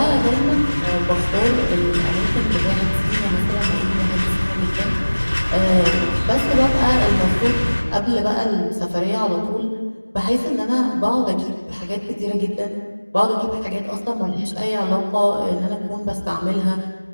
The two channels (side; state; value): both; inverted; correlation -1.00